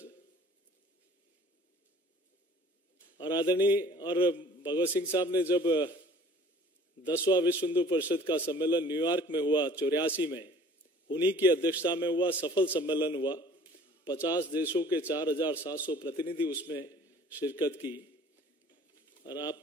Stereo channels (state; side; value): normal; both; correlation 0.51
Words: और आदरणीय और भगवत सिंह साहब ने जब 10वां विश्व हिंदू परिषद का सम्मेलन न्यूयॉर्क में हुआ 84 में, उन्हीं की अध्यक्षता में हुआ सफल सम्मेलन हुआ। 50 देशों के 4700 प्रतिनिधि उसमें शिरकत की और